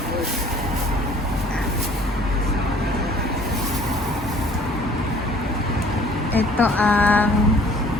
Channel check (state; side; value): normal; both; correlation 0.54